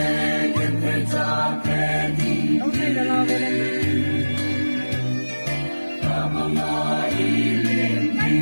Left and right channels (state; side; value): inverted; both; correlation -1.00